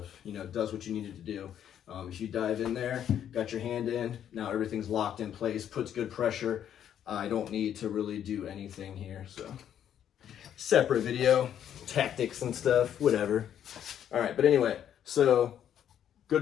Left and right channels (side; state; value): right; quieter; 9.8 dB